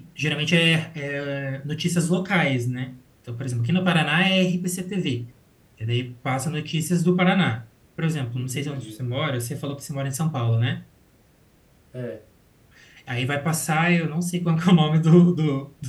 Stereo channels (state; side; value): identical; both; correlation 1.00